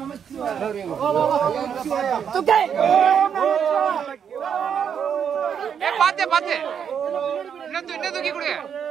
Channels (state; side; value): quieter; left; 7.8 dB